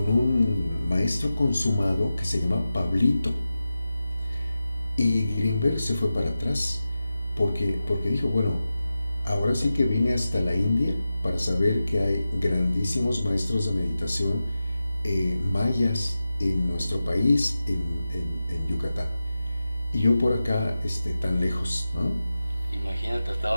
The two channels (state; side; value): inverted; both; correlation -0.92